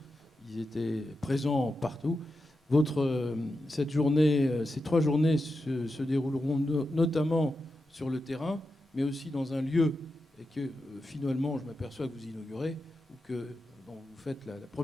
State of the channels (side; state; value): both; normal; correlation 0.89